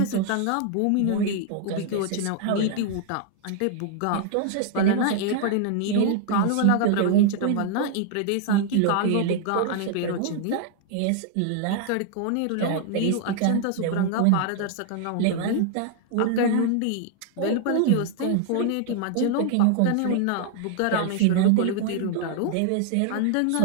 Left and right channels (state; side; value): different; both; correlation 0.00